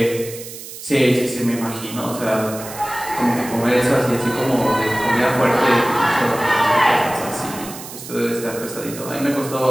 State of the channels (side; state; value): right; noise; hiss, 13 dB below the sound